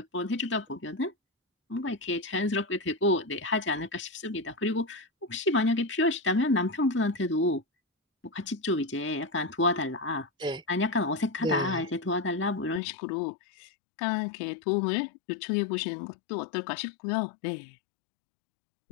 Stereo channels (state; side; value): drops out; right; at 12.8 s